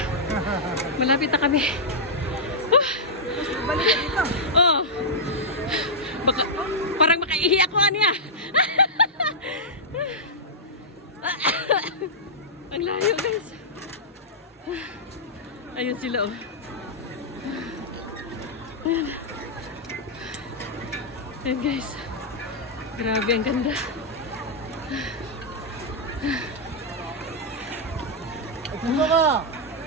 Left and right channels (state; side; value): normal; both; correlation -0.09